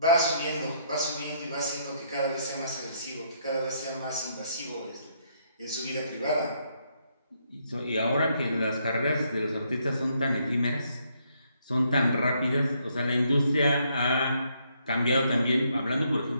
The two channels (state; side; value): inverted; both; correlation -0.72